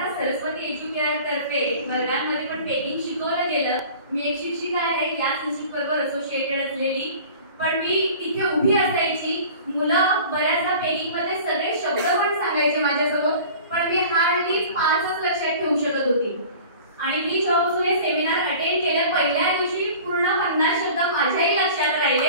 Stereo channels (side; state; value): both; inverted; correlation -0.43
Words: सरस्वती एज्युकेअर तर्फे वर्गांमध्ये पण पेकिंग शिकवलं गेलं. मी एक शिक्षिका आहे, याच इन्स्टिट्यूट बरोबर असोसिएटेड असलेली. पण मी इथे उभी असायची, मुलं बऱ्याचदा पेकिंग मध्ये सगळे शब्द पण सांगायचे माझ्यासमोर, पण मी हार्डली 5च लक्षात ठेवू शकत होती. आणि मी जेव्हापासून हे सेमिनार अटेंड केलं, पहिल्या दिवशी पूर्ण 50 शब्द माझ्याही लक्षात